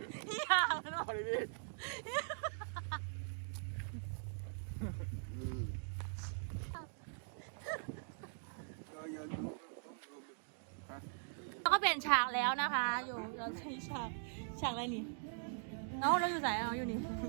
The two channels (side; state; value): left; silent; digital silence